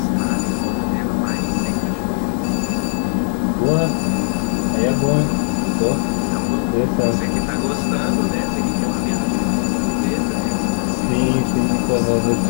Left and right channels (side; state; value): right; silent; 67 dB below the other